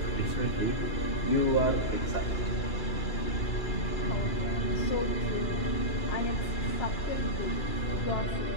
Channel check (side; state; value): right; late; 2.9 ms